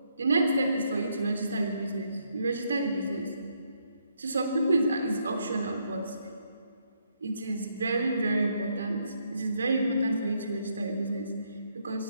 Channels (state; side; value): inverted; both; correlation -0.74